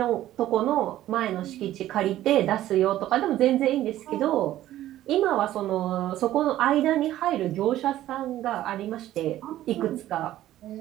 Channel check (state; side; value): quieter; left; 13.7 dB